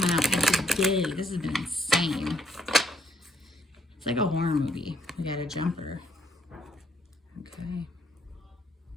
out every day. This has been insane. It's like a horror movie. We got a jumper. Okay.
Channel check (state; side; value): normal; both; correlation 0.70